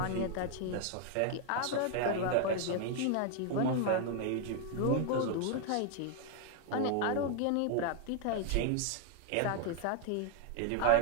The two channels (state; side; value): different; both; correlation 0.01